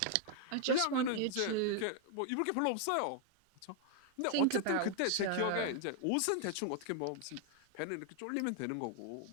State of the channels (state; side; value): different; both; correlation 0.00